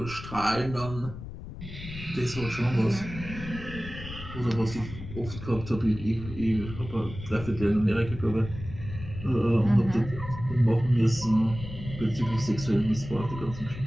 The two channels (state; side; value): noise; left; rumble, 11 dB below the sound